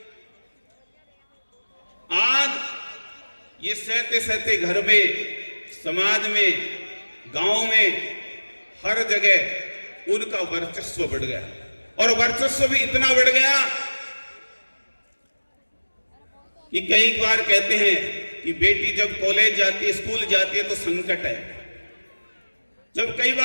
आज ये सहते सहते घर में, समाज में, गांव में, हर जगह उनका वर्चस्व बढ़ गया। और वर्चस्व भी इतना बढ़ गया कि कई बार कहते हैं कि बेटी जब कॉलेज जाती है, स्कूल जाती है तो संकट है। जब कई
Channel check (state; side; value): inverted; both; correlation -1.00